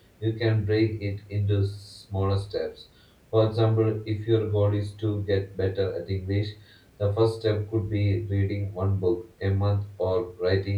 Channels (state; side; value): identical; both; correlation 1.00